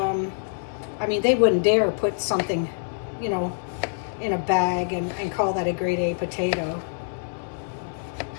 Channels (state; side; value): silent; right; digital silence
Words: I mean, they wouldn't dare put something, you know, in a bag and call that a grade A potato.